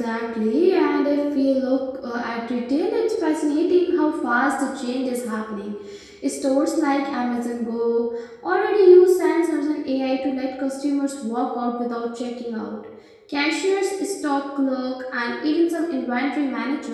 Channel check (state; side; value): identical; both; correlation 1.00